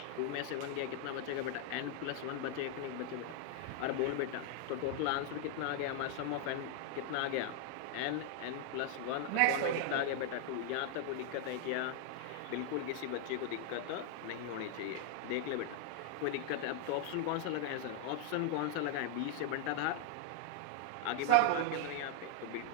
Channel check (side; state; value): both; different; correlation 0.00